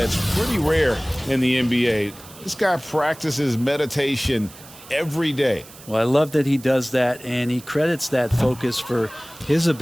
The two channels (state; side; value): noise; right; hiss, 19 dB below the sound